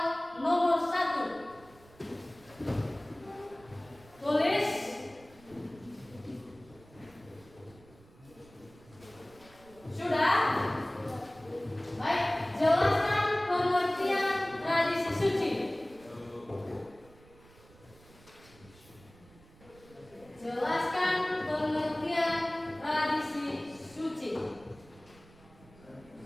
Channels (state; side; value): noise; right; rumble, 24 dB below the sound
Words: nomor 1. Tulis. Sudah? Baik, jelaskan pengertian tradisi suci. Jelaskan pengertian tradisi suci.